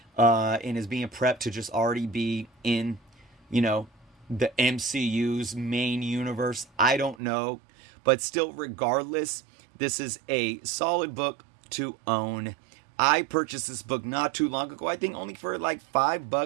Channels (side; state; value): left; drops out; at 7.2 s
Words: and is being prepped to just already be in, the MCU's main universe. I don't know. But still, regardless, this is a solid book to own. I purchased this book not too long ago. I think only for like